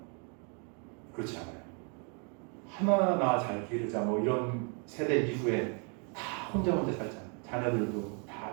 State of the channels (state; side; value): quieter; left; 37.4 dB